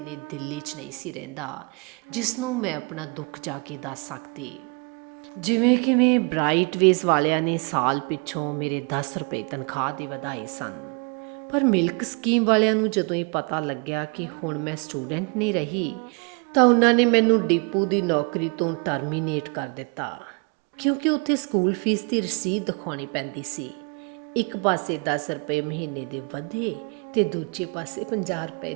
ਦਿੱਲੀ 'ਚ ਨਹੀਂ ਸੀ ਰਹਿੰਦਾ ਜਿਸ ਨੂੰ ਮੈਂ ਆਪਣਾ ਦੁੱਖ ਜਾ ਕੇ ਦੱਸ ਸਕਦੀ। ਜਿਵੇਂ ਕਿਵੇਂ ਬ੍ਰਾਈਟਵੇਜ਼ ਵਾਲਿਆਂ ਨੇ ਸਾਲ ਪਿੱਛੋਂ ਮੇਰੇ 10 ਰੁਪਏ ਤਨਖਾਹ ਦੇ ਵਧਾਏ ਸਨ, ਪਰ ਮਿਲਕ ਸਕੀਮ ਵਾਲਿਆਂ ਨੂੰ ਜਦੋਂ ਇਹ ਪਤਾ ਲੱਗਿਆ ਕਿ ਹੁਣ ਮੈਂ ਸਟੂਡੈਂਟ ਨਹੀਂ ਰਹੀ ਤਾਂ ਉਹਨਾਂ ਨੇ ਮੈਨੂੰ ਡਿਪੂ ਦੀ ਨੌਕਰੀ ਤੋਂ ਟਰਮੀਨੇਟ ਕਰ ਦਿੱਤਾ, ਕਿਉਂਕਿ ਉੱਥੇ ਸਕੂਲ ਫੀਸ ਦੀ ਰਸੀਦ ਦਿਖਾਉਣੀ ਪੈਂਦੀ ਸੀ। ਇੱਕ ਪਾਸੇ 10 ਰੁਪਏ ਮਹੀਨੇ ਦੇ ਵਧੇ ਤੇ ਦੂਜੇ ਪਾਸੇ 50 ਰੁਪਏ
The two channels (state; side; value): quieter; left; 32.6 dB